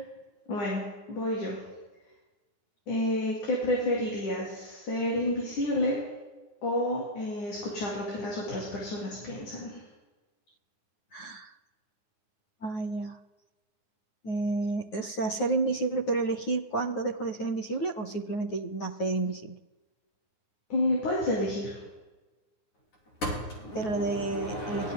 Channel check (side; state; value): right; late; 9.4 ms